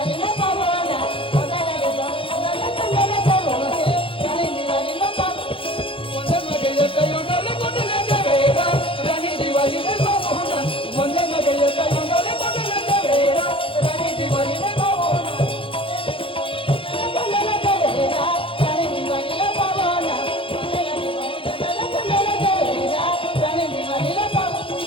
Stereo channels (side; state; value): right; late; 0.26 ms